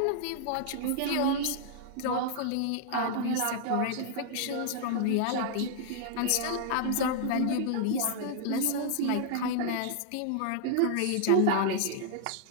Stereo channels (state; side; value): different; both; correlation -0.01